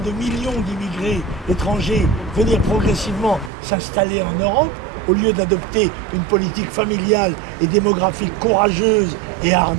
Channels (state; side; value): drops out; left; at 3.5 s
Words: de millions d'immigrés étrangers venir progressivement s'installer en Europe, au lieu d'adopter une politique familiale et démographique courageuse et